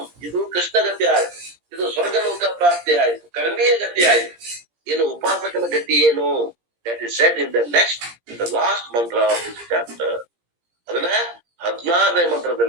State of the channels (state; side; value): late; left; 17 ms